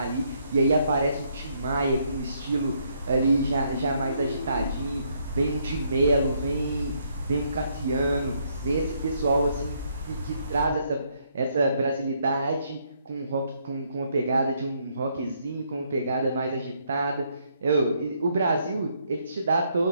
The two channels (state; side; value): inverted; both; correlation -0.72